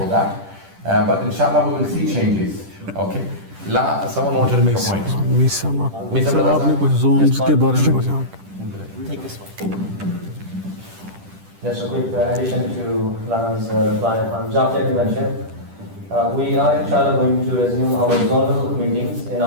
that. But inshallah, we will see changes. Okay. Someone wanted to make a point. Take this one. Just a quick addition to Lana's reply on Jafaria Convention. We are inshallah going to resume our zonal meetings in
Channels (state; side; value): late; left; 10 ms